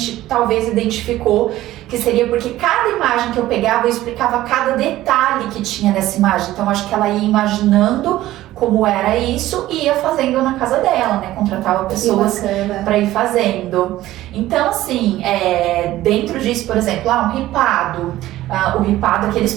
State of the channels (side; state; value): left; quieter; 15.3 dB